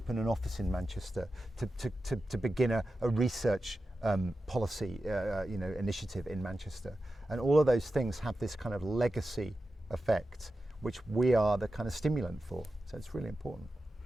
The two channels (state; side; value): normal; both; correlation 0.92